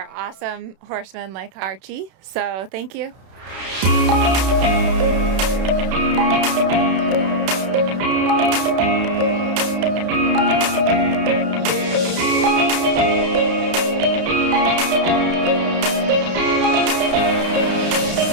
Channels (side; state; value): left; late; 32 ms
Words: awesome horsemen like Archie. So thank you.